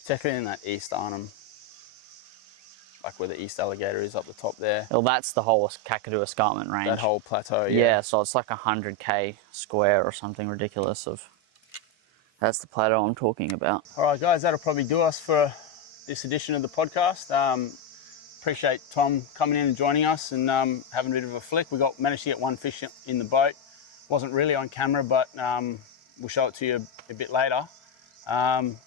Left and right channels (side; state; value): both; normal; correlation 0.06